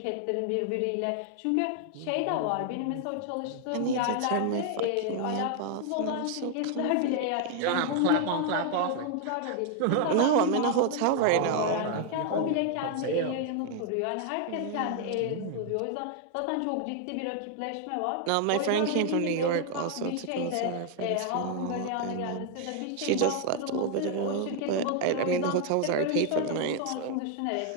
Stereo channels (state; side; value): different; both; correlation 0.00